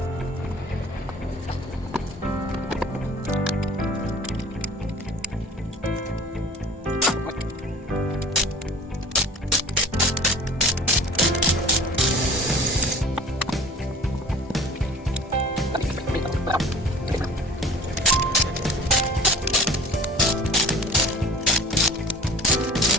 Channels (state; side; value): normal; both; correlation 0.45